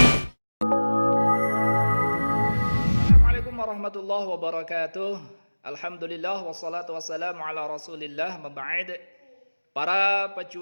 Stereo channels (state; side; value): inverted; both; correlation -1.00